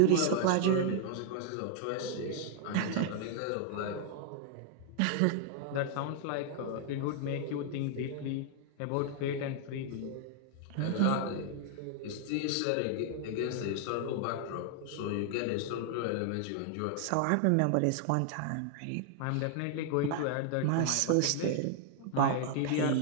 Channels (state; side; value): different; both; correlation 0.00